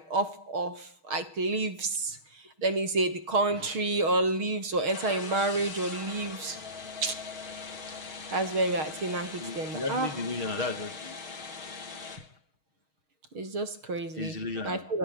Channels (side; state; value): left; late; 6.4 ms